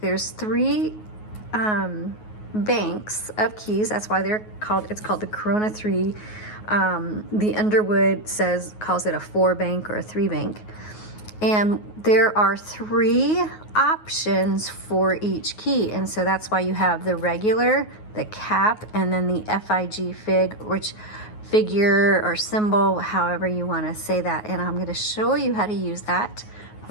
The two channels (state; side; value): late; right; 9.4 ms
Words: There's 3 banks of keys. That's why it's called the Corona 3. The Underwood calls it a 4-bank or a 3-bank. And there are 3 options for each key. And so that's why you have the regular, the cap, and then the FIG fig, which figure or symbol, however you want to say that. And I'm going to show you how to use that